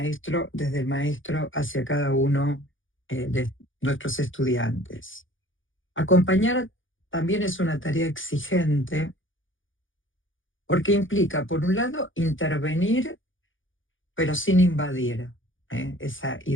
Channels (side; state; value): right; late; 0.57 ms